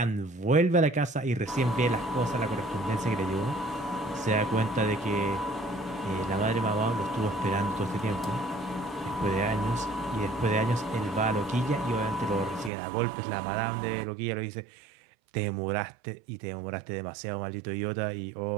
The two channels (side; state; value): left; drops out; at 12.7 s